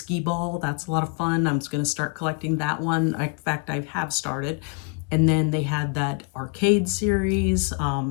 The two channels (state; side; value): quieter; right; 35.9 dB